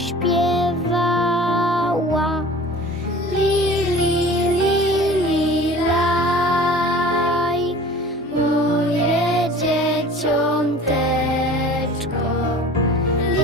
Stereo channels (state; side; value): normal; both; correlation 0.43